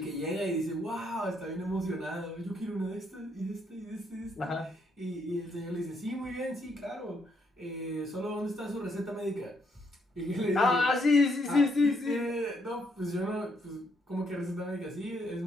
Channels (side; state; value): both; normal; correlation 0.73